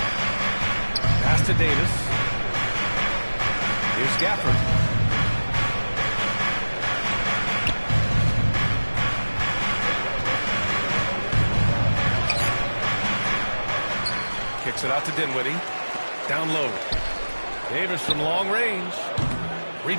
Pass to Davis. Here's Gafford. Kicks it out to Dinwiddie. Down low. Davis from long range.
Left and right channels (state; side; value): inverted; both; correlation -1.00